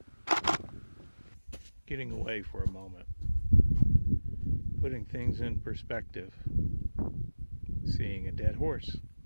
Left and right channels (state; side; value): inverted; both; correlation -1.00